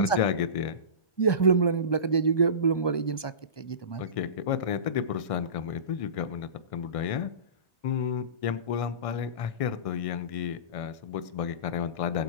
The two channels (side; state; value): right; late; 1.2 ms